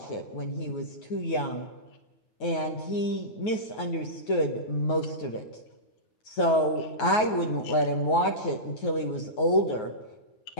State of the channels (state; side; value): late; right; 9.4 ms